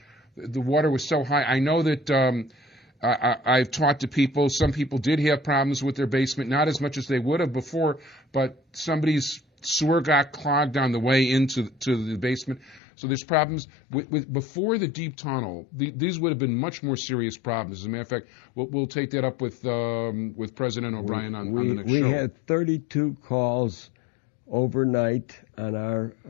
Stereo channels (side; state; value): right; drops out; at 12.8 s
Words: was so high. I know that I've talked to people. Some people did have problems with their basement, not as much as they would have before, but somebody's sewer got clogged on the way into the basement. So there's problems. Before the deep tunnel, these would have been much more serious problems. As a matter of fact, we'll take that up with President O'Brien on the next show. We had 32 calls overnight on